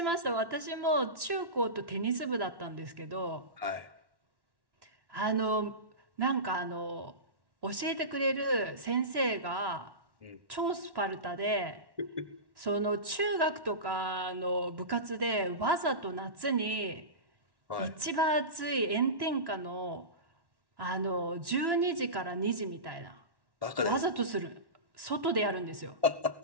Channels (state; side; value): late; left; 1.1 ms